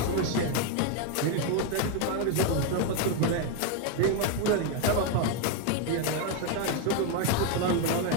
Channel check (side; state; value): both; different; correlation 0.01